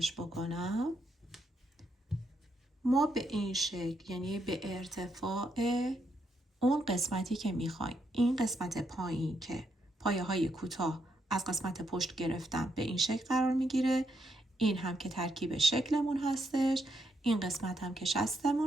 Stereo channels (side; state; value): both; normal; correlation 0.79